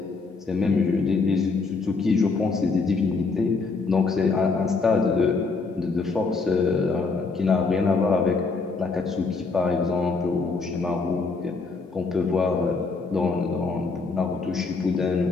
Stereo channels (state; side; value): quieter; right; 4.2 dB